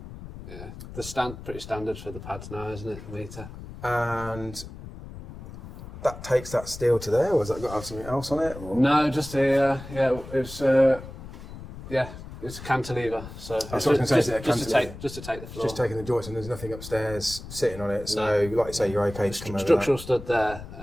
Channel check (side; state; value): left; noise; rumble, 13 dB below the sound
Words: Yeah. Pretty standard for the pads now, isn't it? A metre. And that takes that steel to there, or has that got to have something else on it? Or? No, just a, it's a cantilever. So That's what I was going to say, is it a cantilever? just to take the floor. Just taking the joist, and there's nothing upstairs sitting on it, so like you say, you're okay to come over Structural that. stud